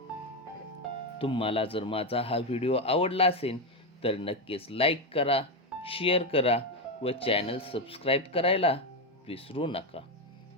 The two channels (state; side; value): normal; both; correlation 0.08